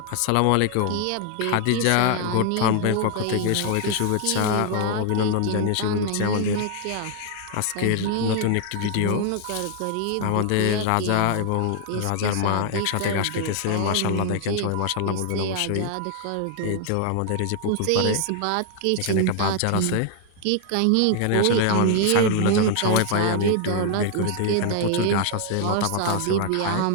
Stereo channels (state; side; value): different; both; correlation 0.00